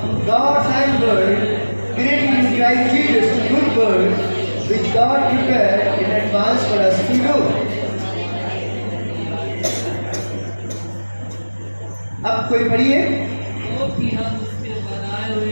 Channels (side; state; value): both; inverted; correlation -1.00